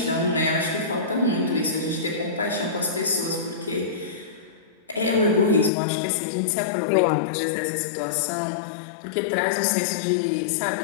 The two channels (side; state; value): right; drops out; at 5.7 s